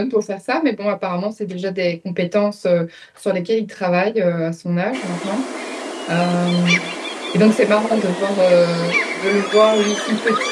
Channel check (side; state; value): both; identical; correlation 1.00